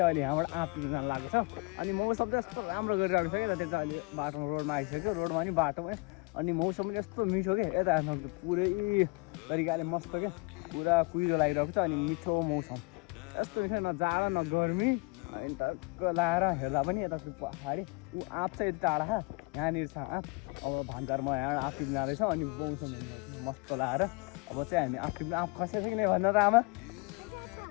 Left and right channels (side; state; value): right; quieter; 29.0 dB